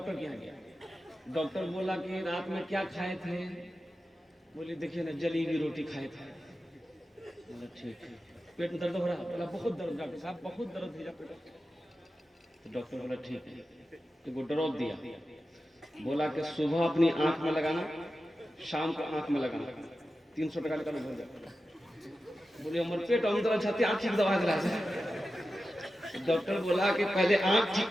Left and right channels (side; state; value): both; normal; correlation 0.92